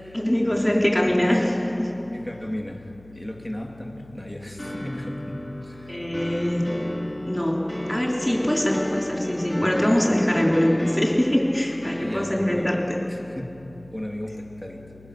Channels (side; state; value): left; noise; hum, 24 dB below the sound